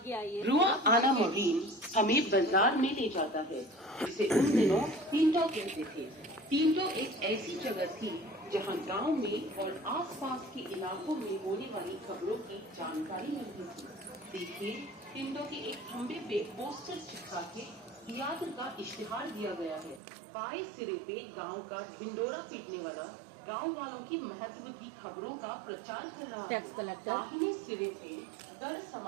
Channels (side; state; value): left; drops out; at 20.0 s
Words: आइए। रुआ आना मरीन हमें बाजार में ले जाता है, जिसे उन दिनों टींटो कहते थे। टींटो एक ऐसी जगह थी जहां गांव में और आसपास के इलाकों में होने वाली खबरों की जानकारी मिलती थी। देखिए, टींटो के एक खंबे पे पोस्टर चिपका के थिएटर का इश्तिहार दिया गया है। बाएं सिरे पे गांव का ढिंडोरा पीटने वाला गांव वालों की महत्व की खबरों का प्रचार कर रहा है। Tax collector. दाहिने सिरे पे कर